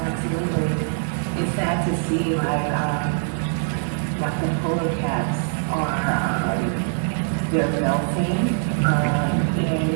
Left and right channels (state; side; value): silent; left; digital silence